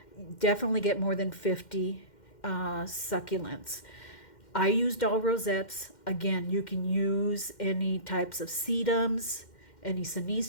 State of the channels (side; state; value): right; late; 2.1 ms